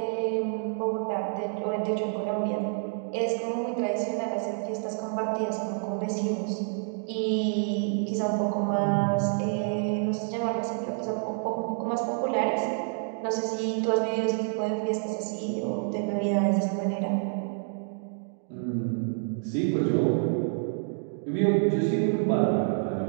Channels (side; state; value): left; silent; 59 dB below the other